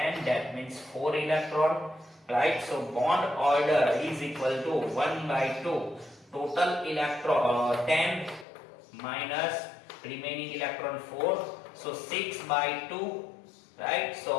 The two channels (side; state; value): right; drops out; at 8.5 s